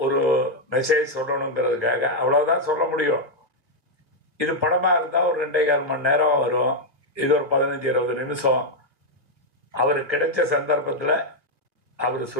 ஒரு மெசேஜ் சொல்லணுங்கிறதுக்காக அவ்வளோதான் சொல்ல முடியும். இது படமாக இருந்தால் ஒரு 2.25 மணி நேரம் வரும். இது ஒரு 15-20 நிமிஷம். அவர் கிடைச்ச சந்தர்ப்பத்தில் அவர்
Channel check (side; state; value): left; late; 1.8 ms